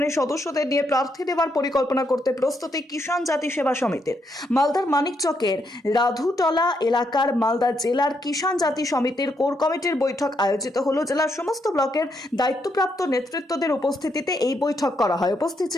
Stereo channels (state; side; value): normal; both; correlation 0.77